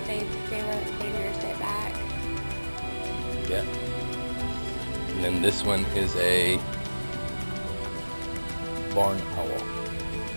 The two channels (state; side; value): inverted; both; correlation -1.00